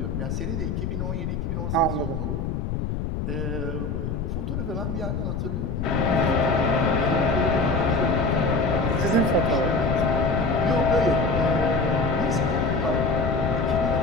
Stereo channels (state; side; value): noise; left; rumble, 3 dB below the sound